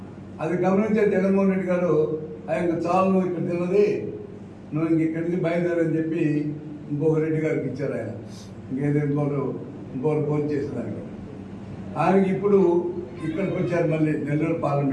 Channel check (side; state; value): both; identical; correlation 1.00